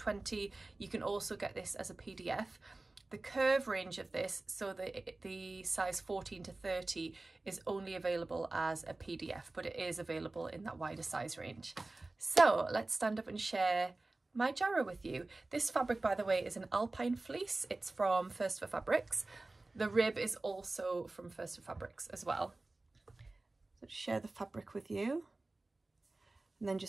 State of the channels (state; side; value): quieter; left; 3.1 dB